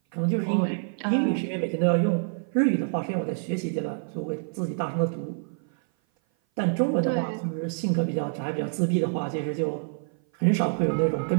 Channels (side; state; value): left; silent; 56 dB below the other